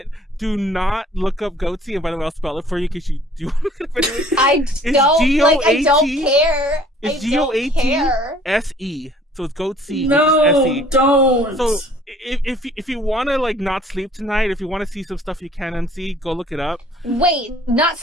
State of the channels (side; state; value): both; normal; correlation 0.55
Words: do not look up goatee, and by the way, I'll spell it for you in case you do want to look up anyway. I don't care. It's GOATSE. So it's goatee. No, S-E. don't. So if you want to like not sleep tonight, if you want to see some stuff you can unsee, go look it up. Wait,